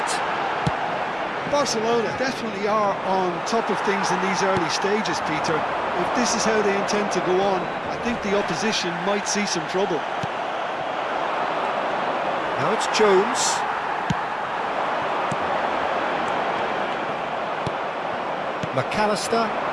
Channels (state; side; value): identical; both; correlation 1.00